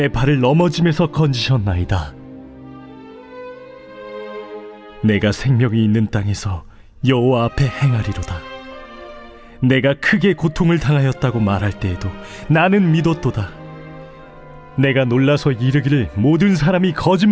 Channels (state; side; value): identical; both; correlation 1.00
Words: 발을 넘어짐에서 건지셨나이다. 내가 생명이 있는 땅에서 여호와 앞에 행하리로다. 내가 크게 고통을 당하였다고 말할 때에도 나는 믿었도다. 내가 놀라서 이르기를 모든 사람이